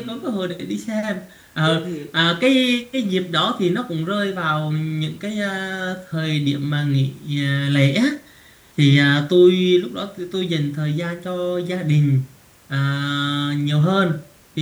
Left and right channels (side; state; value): both; identical; correlation 1.00